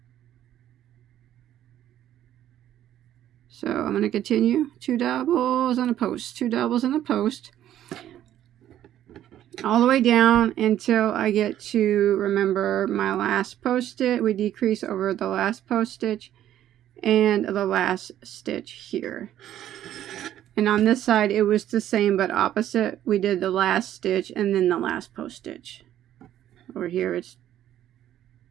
So I'm going to continue 2 doubles and a post, 2 doubles and a post, all the way down until I get to, remember, my last post stitch. We decrease over the last post stitch and the last stitch here. And on this side it was the same but opposite. We did the last stitch and then the last post stitch. Over here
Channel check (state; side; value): quieter; left; 11.8 dB